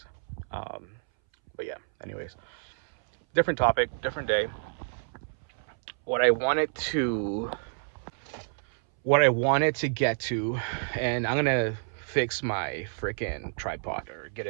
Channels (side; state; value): left; silent; 59 dB below the other